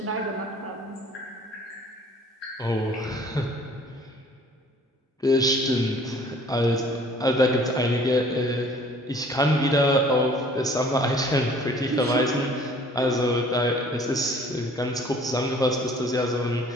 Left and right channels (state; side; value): normal; both; correlation 0.53